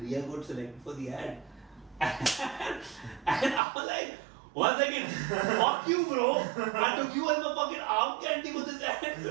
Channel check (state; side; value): drops out; left; at 3.6 s